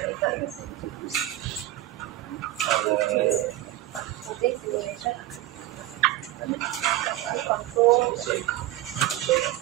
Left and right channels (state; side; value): quieter; left; 15.0 dB